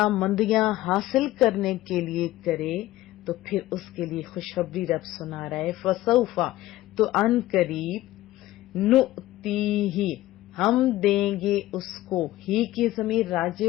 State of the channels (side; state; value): right; quieter; 16.1 dB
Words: مندیاں حاصل کرنے کے لیے کرے تو پھر اس کے لیے خوشخبری رب سنا رہا ہے، فسوف تو ان قریب، نؤتیہ ہم دیں گے اس کو، ہی کی ضمیر